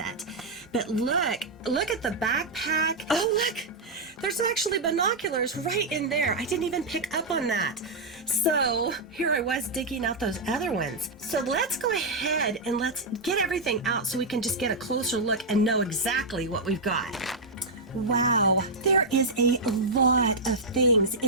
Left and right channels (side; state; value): left; quieter; 3.0 dB